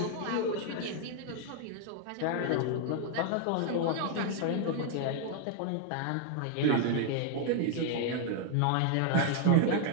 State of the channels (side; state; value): both; different; correlation 0.00